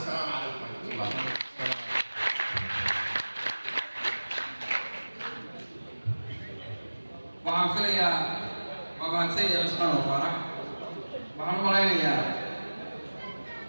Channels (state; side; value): inverted; both; correlation -1.00